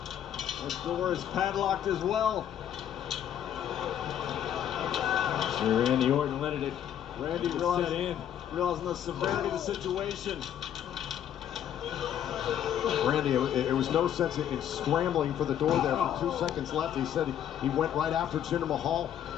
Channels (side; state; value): right; quieter; 10.1 dB